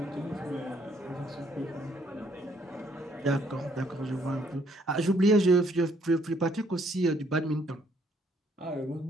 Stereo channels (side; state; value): both; normal; correlation 0.67